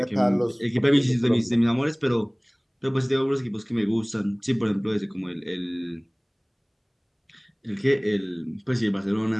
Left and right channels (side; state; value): both; identical; correlation 1.00